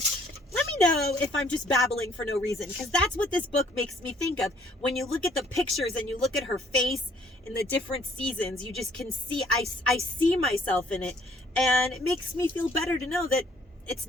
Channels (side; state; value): both; normal; correlation 0.62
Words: Let me know if I'm just babbling for no reason, because that's what this book makes me think of. When you look at the pictures and you look at her face in the different seasons, you just can see, I see myself in it. And it makes me feel better to know that it's